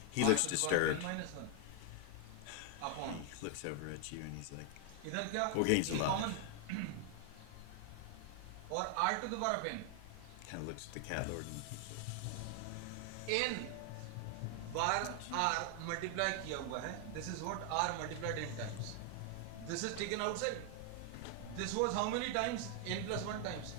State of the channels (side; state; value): both; different; correlation 0.00